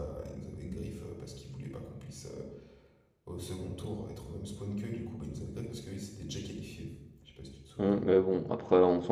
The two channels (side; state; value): both; identical; correlation 1.00